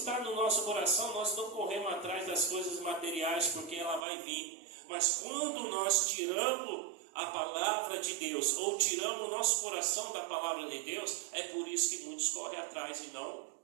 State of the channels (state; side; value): drops out; left; at 4.0 s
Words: no nosso coração, nós não corremos atrás das coisas materiais, porque ela vai vir. Mas quando nós tiramos a palavra de Deus, ou tiramos o nosso coração da palavra de Deus, é por isso que muitos correm atrás e não